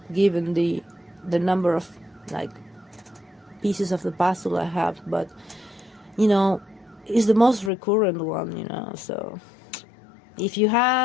given the number of pieces of the puzzle I have. But it's the most recurrent one, so if you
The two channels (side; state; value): right; drops out; at 7.7 s